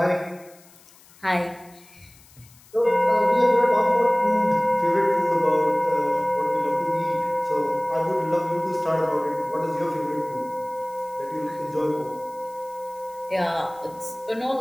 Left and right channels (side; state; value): left; noise; hiss, 26 dB below the sound